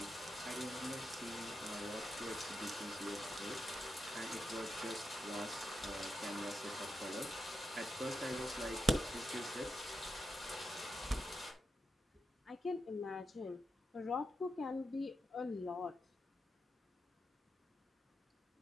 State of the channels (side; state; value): both; normal; correlation 0.86